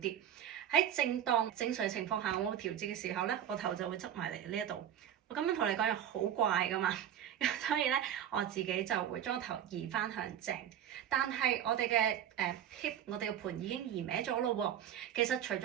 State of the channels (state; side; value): quieter; left; 10.2 dB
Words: 喺正當正常情況下，我調節嘅時候咧，我頭就會側埋嚟呢一度。我咁樣同你講又好怪噶嘛，所以咧我自己就會將個頭移翻向正。但係我哋嘅hip，我哋嘅盤已經移歪咗咯喎。其實除